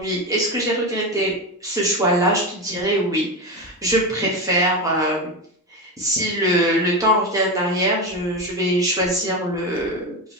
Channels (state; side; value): normal; both; correlation 0.17